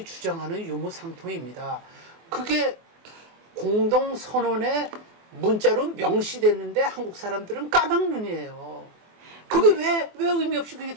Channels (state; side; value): late; left; 24 ms